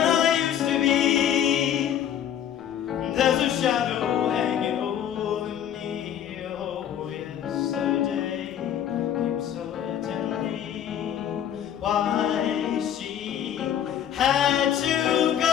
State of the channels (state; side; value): quieter; right; 9.8 dB